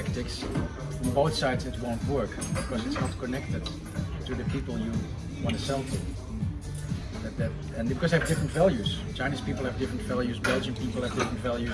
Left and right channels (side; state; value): both; identical; correlation 1.00